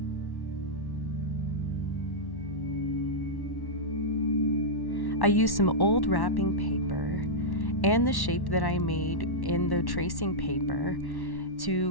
I used some old wrapping paper and the shape that I made in the tracing paper to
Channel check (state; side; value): late; right; 1.1 ms